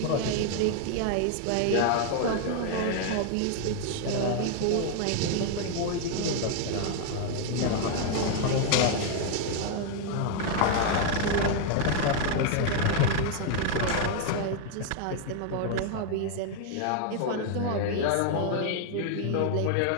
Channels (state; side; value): different; both; correlation 0.00